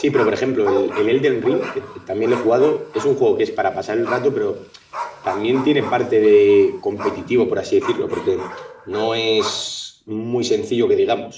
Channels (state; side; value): identical; both; correlation 1.00